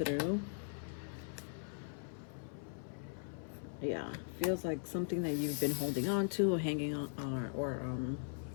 Yeah, feels like something that you've been holding on to or hanging on or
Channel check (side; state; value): right; silent; 51 dB below the other